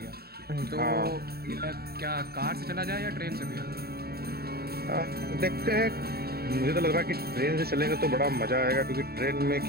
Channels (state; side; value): late; left; 0.45 ms